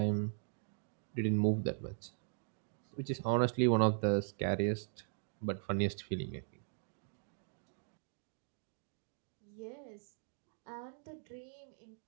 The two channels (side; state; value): left; silent; 51 dB below the other